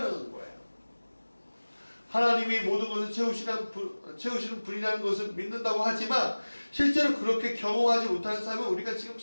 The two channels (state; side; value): inverted; both; correlation -1.00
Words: 거예요. 하나님이 모든 것을 채우시는 분이라는 것을 믿는다고 하지만 실제로 그렇게 경험하지 못하는 삶을 우리가 지금